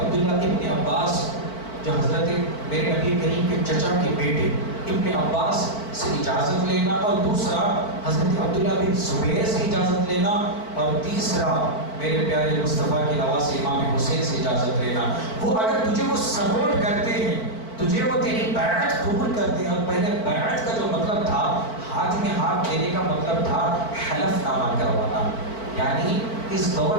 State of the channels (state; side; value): late; right; 4.5 ms